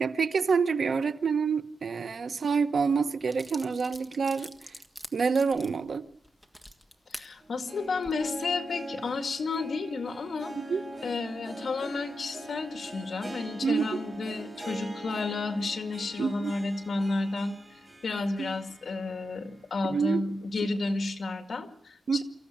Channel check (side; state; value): both; normal; correlation 0.86